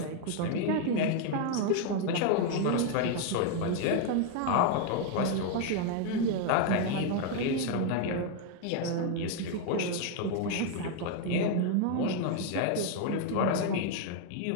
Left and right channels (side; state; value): both; different; correlation 0.01